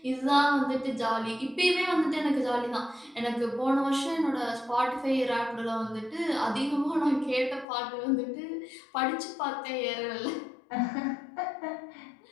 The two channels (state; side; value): drops out; right; at 7.7 s